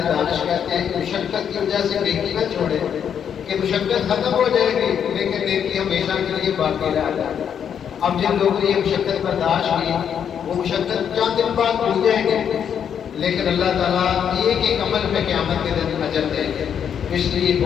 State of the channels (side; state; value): right; quieter; 8.2 dB